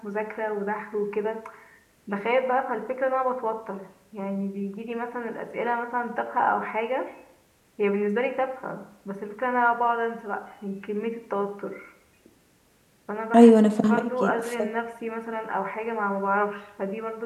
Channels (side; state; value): both; identical; correlation 1.00